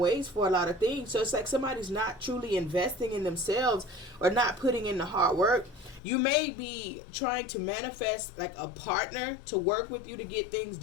for a lot of things. So it's like somebody's not truly investing in themselves or not putting in the hard work. You may be trying to manifest like a partner to work with you to get things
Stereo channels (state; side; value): drops out; right; at 6.0 s